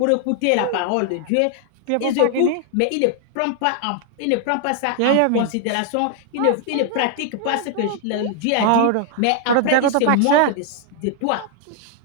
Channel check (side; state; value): both; different; correlation 0.00